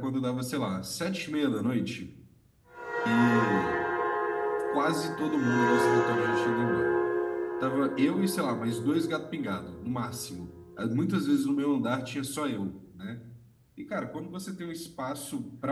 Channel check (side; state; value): both; identical; correlation 1.00